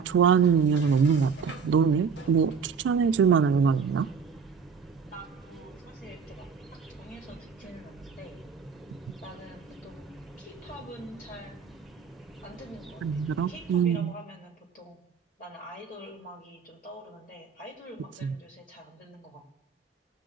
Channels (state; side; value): quieter; left; 6.0 dB